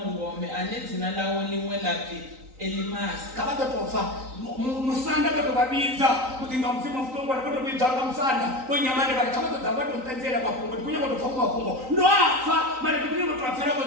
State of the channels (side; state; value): left; late; 3.9 ms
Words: ane dzina lawo limwe lapi Elimasi. Kabato tofa musanda bato babiza mutinga mfimo mfutongo bato biza musanda wenyamane bali kabato tabato mtanzela kwa kungo kunya bato fakuma kungo ndo afa mara kunya bato afera